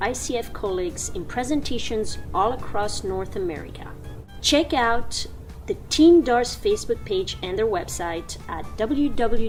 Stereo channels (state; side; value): identical; both; correlation 1.00